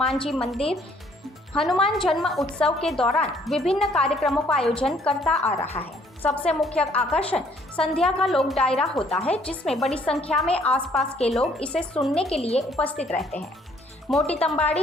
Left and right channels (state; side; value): normal; both; correlation 0.63